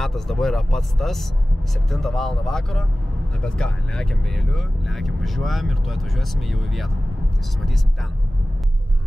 dabar yra pats tas, 7 valandą vakaro. Na bet ką, lekiam vėliu, lekiam važiuojam ir tuoj atvažiuosime jau į vietą. Tai susimatysim ten.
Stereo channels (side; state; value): both; normal; correlation 0.97